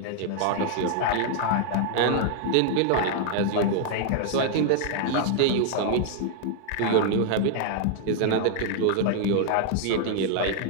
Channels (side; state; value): both; different; correlation 0.00